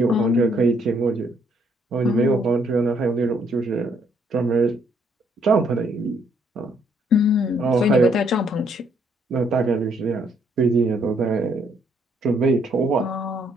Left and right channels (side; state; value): both; normal; correlation 0.69